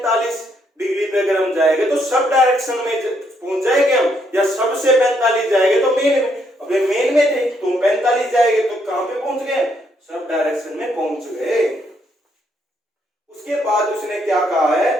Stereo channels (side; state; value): both; normal; correlation 0.73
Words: डिग्री पे अगर हम जाएंगे तो सब डायरेक्शन में पहुंच जाएंगे हम, या सबसे 45 जाएंगे तो मेन में। अब मेन में थे तो 45 जाएंगे तो कहां पे पहुंच गए? सब डायरेक्शन में पहुंच गए। उसके बाद उसने क्या कहा है